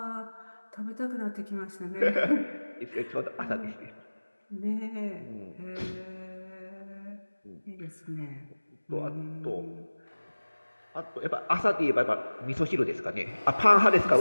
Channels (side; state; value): both; inverted; correlation -1.00